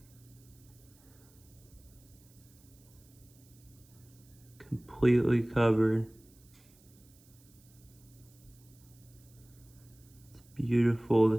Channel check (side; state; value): right; noise; hiss, 27 dB below the sound